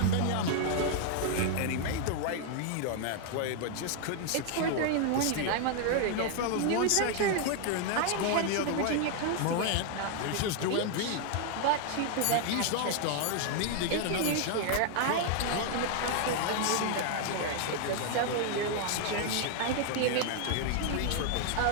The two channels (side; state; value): both; different; correlation 0.00